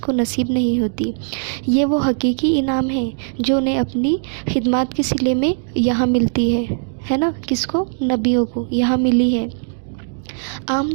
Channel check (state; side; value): silent; left; digital silence